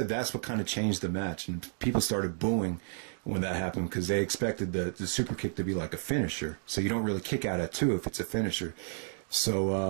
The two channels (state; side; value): silent; left; digital silence